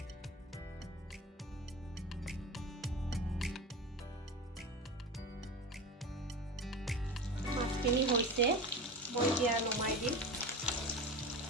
মাছখিনি হৈছে, মই এতিয়া নমাই দিম।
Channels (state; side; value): normal; both; correlation 0.28